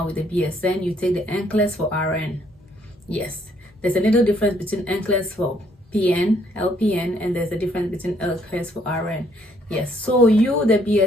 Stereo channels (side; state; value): both; normal; correlation 0.67